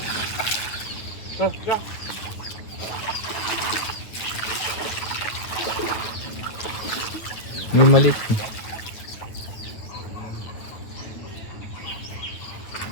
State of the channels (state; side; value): late; right; 9.0 ms